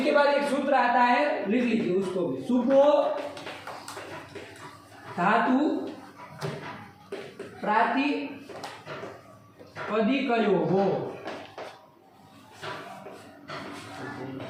बाद एक सूत्र आता है, लिख लीजिए उसको भी। सुपो धातु प्रातिपदिकयोः,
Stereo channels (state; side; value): identical; both; correlation 1.00